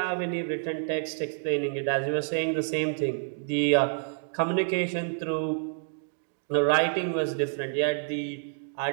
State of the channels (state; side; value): silent; left; digital silence